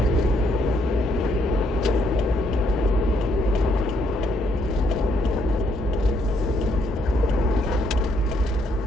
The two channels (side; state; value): both; normal; correlation 0.72